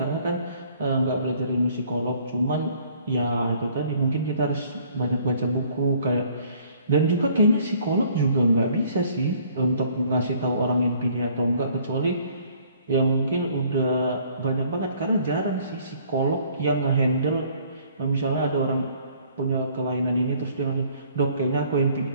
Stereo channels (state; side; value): inverted; both; correlation -0.58